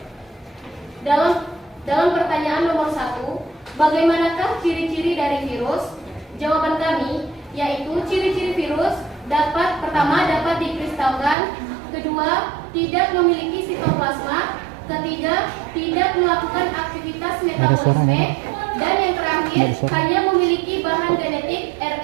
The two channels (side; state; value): left; drops out; at 11.4 s